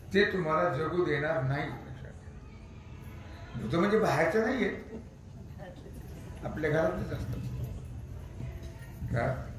ते तुम्हाला जगू देणार नाही. भूत म्हणजे बाहेरचं नाही येत आपल्या घरातच असतं.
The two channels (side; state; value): both; identical; correlation 1.00